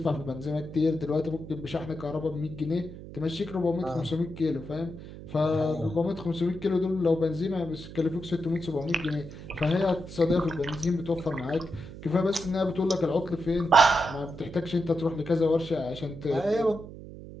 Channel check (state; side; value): noise; right; hum, 13 dB below the sound